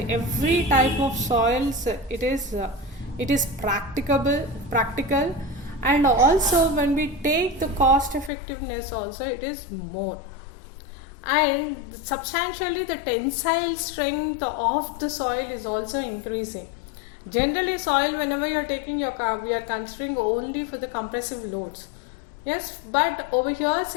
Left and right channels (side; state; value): right; drops out; at 8.3 s